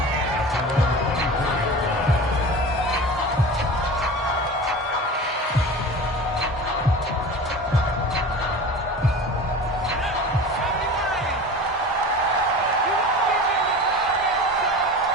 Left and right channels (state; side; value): normal; both; correlation 0.35